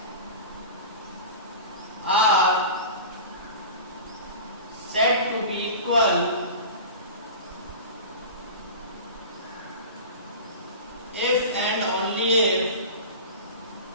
are equal if and only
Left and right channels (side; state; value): both; inverted; correlation -0.33